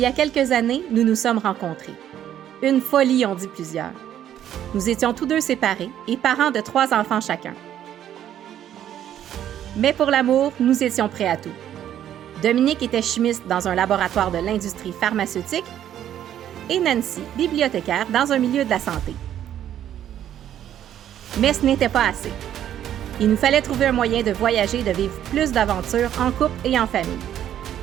a quelques années, nous nous sommes rencontrés. Une folie, ont dit plusieurs. Nous étions tous deux séparés et parents de 3 enfants chacun. Mais pour l'amour, nous étions prêts à tout. Dominique était chimiste dans un laboratoire de l'industrie pharmaceutique et Nancy, bibliothécaire dans un milieu de la santé. Mais ce n'était pas assez. Il nous fallait trouver un moyen de voyager et de vivre plus d'aventures en couple et en famille.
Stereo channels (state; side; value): quieter; left; 10.8 dB